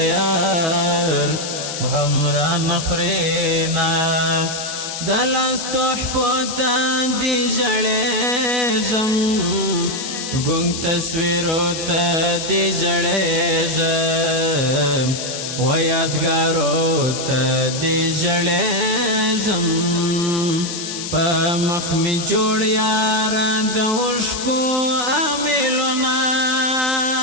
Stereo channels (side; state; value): left; noise; hiss, 6 dB below the sound